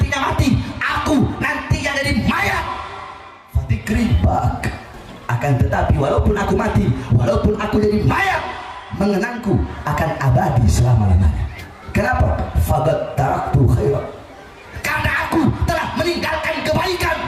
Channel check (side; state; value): both; identical; correlation 1.00